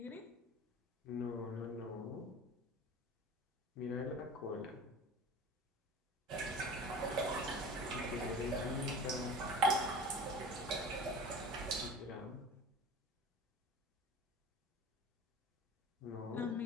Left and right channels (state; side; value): normal; both; correlation 0.39